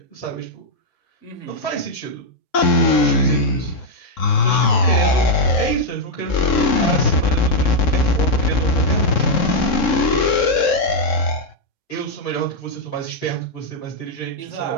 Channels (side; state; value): right; late; 3.7 ms